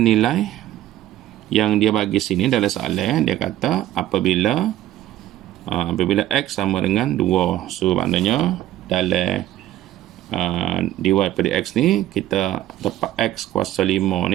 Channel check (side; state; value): left; quieter; 13.6 dB